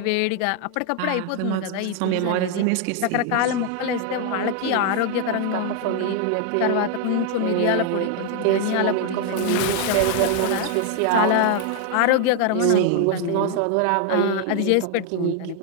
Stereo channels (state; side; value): different; both; correlation 0.01